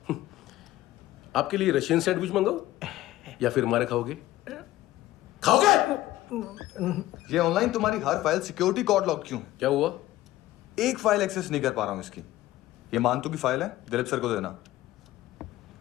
आपके लिए रशियन सैंडविच मंगाओ या फिर हमारे खाओगे? खाओगे? ये ऑनलाइन तुम्हारी हर फाइल सिक्योरिटी कोड लॉक क्यों? क्या हुआ? एक फाइल एक्सेस नहीं कर पा रहा हूं इसकी। ये मानतू की फाइल है, दिलीप सर को देना।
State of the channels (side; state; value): right; quieter; 15.5 dB